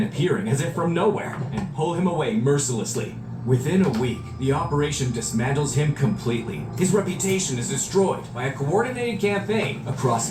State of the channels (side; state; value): both; identical; correlation 1.00